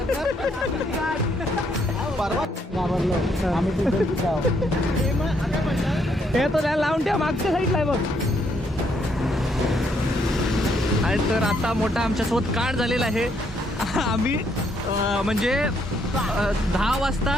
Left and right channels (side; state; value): both; normal; correlation 0.72